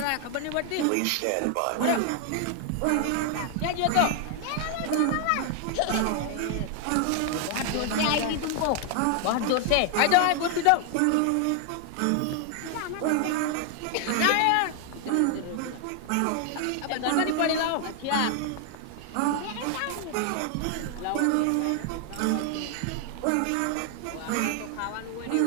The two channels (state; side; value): different; both; correlation 0.00